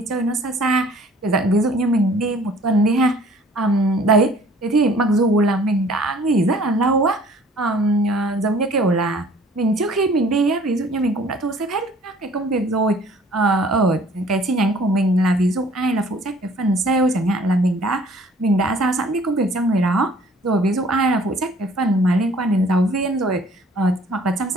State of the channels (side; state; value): both; normal; correlation 0.54